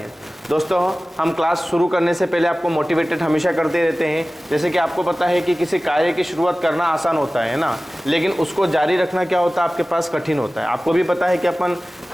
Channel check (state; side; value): normal; both; correlation 0.97